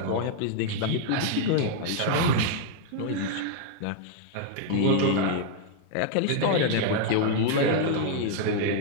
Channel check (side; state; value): both; different; correlation -0.01